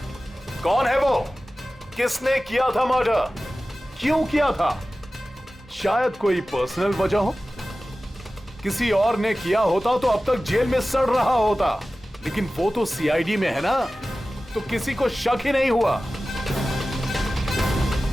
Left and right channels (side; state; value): both; normal; correlation 0.96